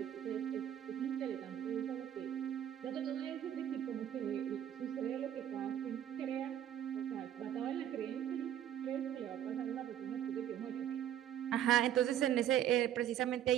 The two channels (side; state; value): left; quieter; 10.7 dB